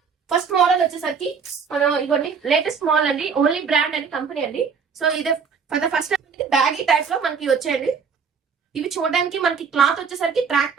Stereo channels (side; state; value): left; quieter; 6.0 dB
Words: ఫస్ట్ మోడల్ వచ్చేసరికి మనం ఇవన్నీ లేటెస్ట్ మోడల్ అండి, ఓన్లీ బ్రాండ్ అని కంపెనీ అండి. సో ఇదే for the first baggy type లో మనకి వచ్చాయండి. ఇవి చూడడానికి మనకి క్లాత్ వచ్చేసరికి ట్రాక్